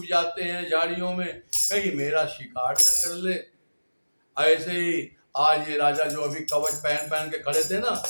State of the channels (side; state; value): both; inverted; correlation -1.00